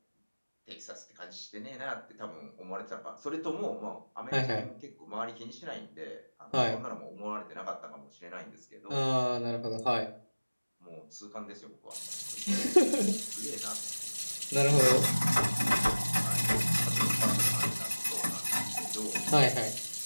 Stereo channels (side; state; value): both; inverted; correlation -1.00